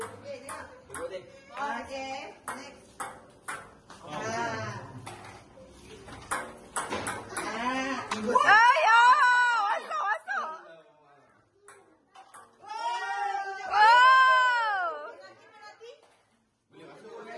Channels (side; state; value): both; identical; correlation 1.00